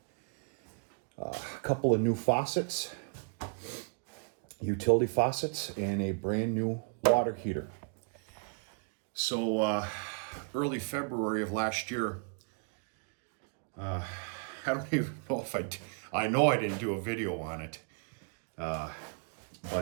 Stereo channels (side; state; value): left; quieter; 37.9 dB